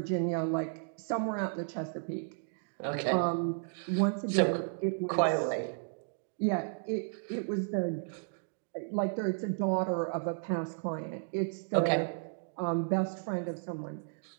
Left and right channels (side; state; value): left; silent; digital silence